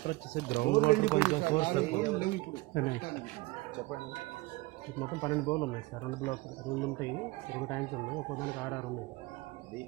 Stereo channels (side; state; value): left; quieter; 22.2 dB